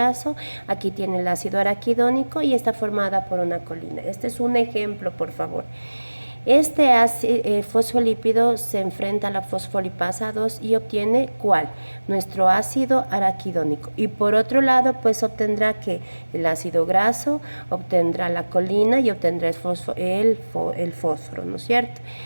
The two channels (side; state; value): both; inverted; correlation -1.00